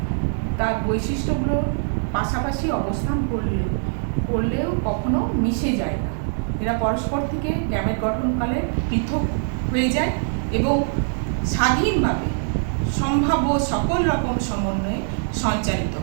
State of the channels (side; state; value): left; silent; digital silence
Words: তার বৈশিষ্ট্যগুলো পাশাপাশি অবস্থান করলেও কখনো মিশে যায় না। এরা পরস্পর থেকে গ্যামেট গঠনকালে পৃথক হয়ে যায় এবং স্বাধীনভাবে সম্ভাব্য সকল রকম সমন্বয়ে সঞ্চারিত